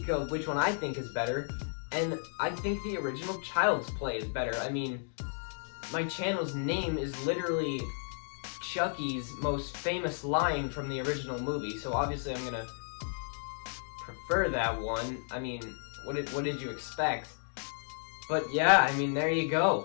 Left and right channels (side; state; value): right; silent; digital silence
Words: of which one I think is better, and I think the original Child's Play is better. I mean, my channel's name is literally Chucky's most famous line from the original movie, so obviously I'm gonna prefer that one. I mean, what did you expect? But yeah, I mean, there you